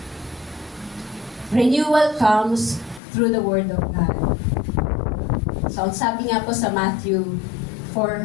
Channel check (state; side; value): drops out; right; at 3.0 s